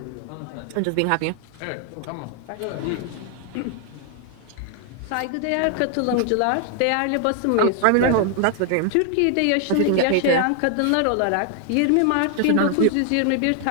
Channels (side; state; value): both; different; correlation 0.00